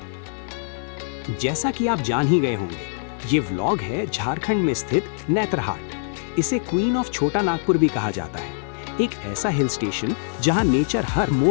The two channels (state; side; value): silent; right; digital silence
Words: जैसा कि आप जान ही गए होंगे, ये व्लॉग है झारखंड में स्थित नेतरहाट। इसे क्वीन ऑफ छोटा नागपुर भी कहा जाता है। एक ऐसा हिल स्टेशन जहां नेचर हर